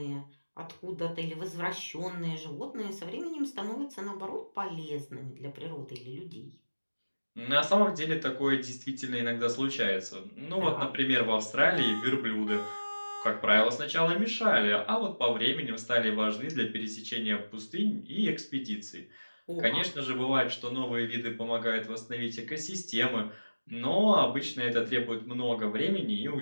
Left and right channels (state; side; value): inverted; both; correlation -1.00